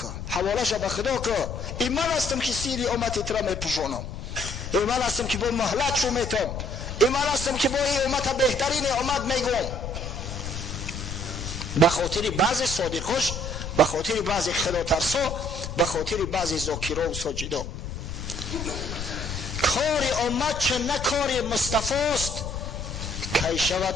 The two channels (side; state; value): left; noise; rumble, 7 dB below the sound